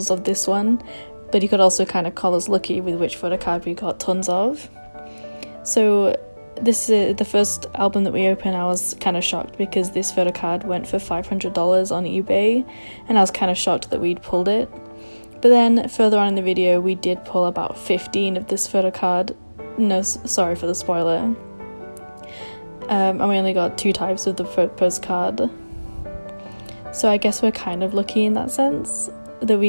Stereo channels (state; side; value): inverted; both; correlation -1.00